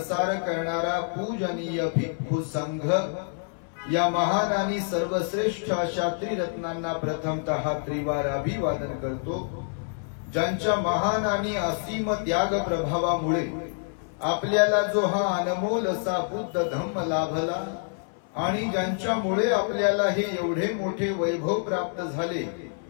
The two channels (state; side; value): silent; right; 60 dB below the other